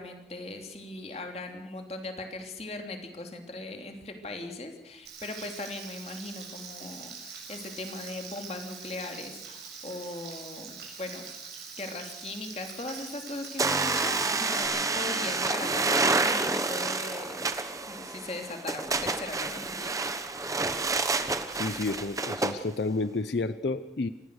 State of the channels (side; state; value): both; normal; correlation 0.30